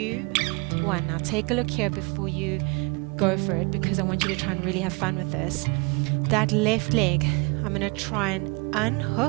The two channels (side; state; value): left; quieter; 30.6 dB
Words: 1. Now take a look here before you go for it, because I want you to try and really have fun with this. That left leg, I'm going to try and